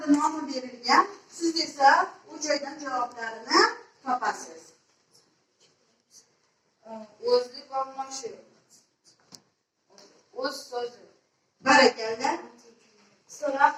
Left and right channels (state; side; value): identical; both; correlation 1.00